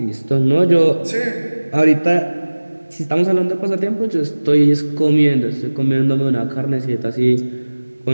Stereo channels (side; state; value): both; inverted; correlation -1.00